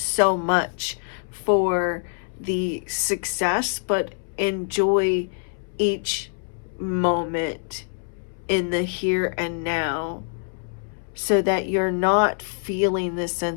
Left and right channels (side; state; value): right; silent; 62 dB below the other